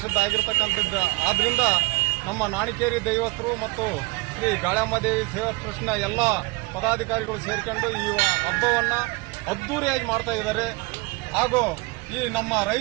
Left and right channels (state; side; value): quieter; left; 25.1 dB